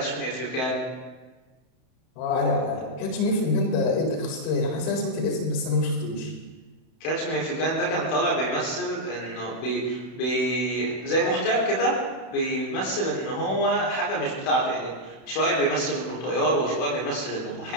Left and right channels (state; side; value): late; right; 31 ms